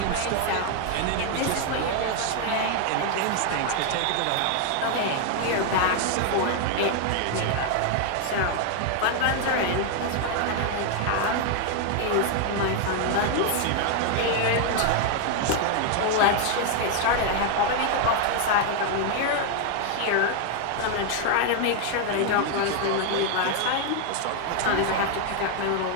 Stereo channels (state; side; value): different; both; correlation 0.00